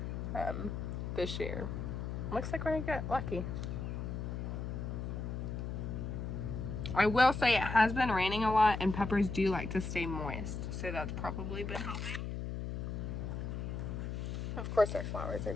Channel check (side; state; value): left; noise; hum, 4 dB below the sound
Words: This year, looks like we're gonna get lucky. I will say it has been raining a lot and peppers do like to stay moist, so that's probably been helping. Of course our flowers are